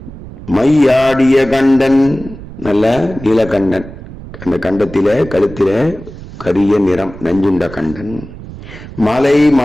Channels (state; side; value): noise; right; rumble, 15 dB below the sound